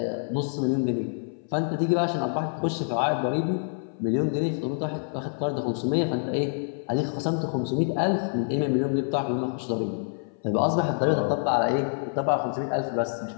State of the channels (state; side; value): silent; right; 57 dB below the other